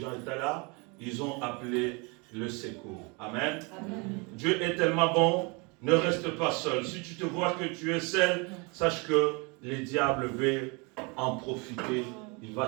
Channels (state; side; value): quieter; left; 30.0 dB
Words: étaient là, ils ont appelé le secours. Amen. Amen. Dieu est tellement bon, ne reste pas seul. Si tu te vois que tu es seul, sache que les diables veulent en profiter, il